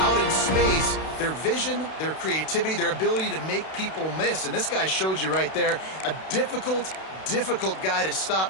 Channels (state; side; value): late; right; 32 ms